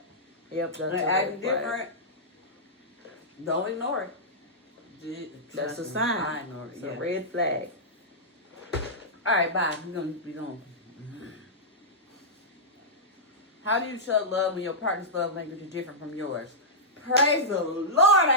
yep, that's and acting different, don't ignore it. That's a sign. I ignore it. It's a red flag. All right, bye. We're gonna. How do you show love when your partner's love language is different from yours? Praise the Lord,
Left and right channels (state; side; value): normal; both; correlation -0.12